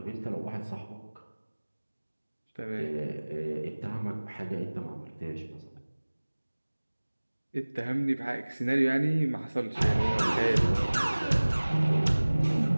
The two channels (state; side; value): inverted; both; correlation -1.00